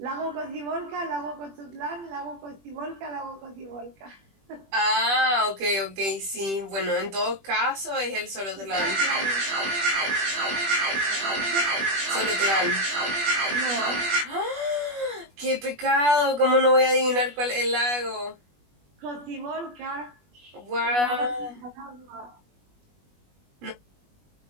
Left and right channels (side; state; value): left; late; 21 ms